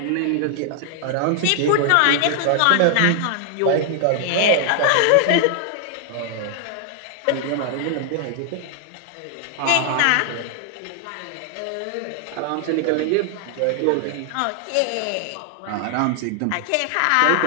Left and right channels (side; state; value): both; different; correlation 0.00